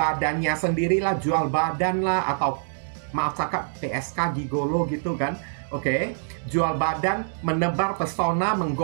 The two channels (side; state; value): left; silent; digital silence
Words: sendirilah, jual badan lah, atau maaf cakap PSK gigolo gitu kan. Oke, jual badan, menebar pesona,